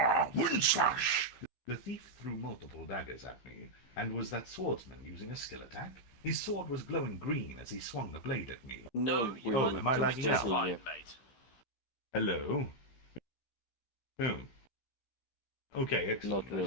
Wind slash! The thief threw multiple daggers at me, and was that swordsman using a skill attack? His sword was glowing green as he swung the blade at me. No, Oh, am I lagging out? Fine, mate. Hello? Oh. Okay, excellent. Not really. I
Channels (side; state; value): right; late; 15 ms